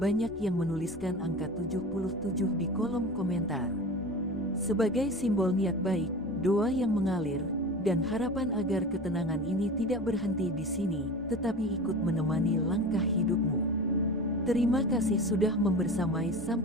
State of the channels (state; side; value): normal; both; correlation 0.33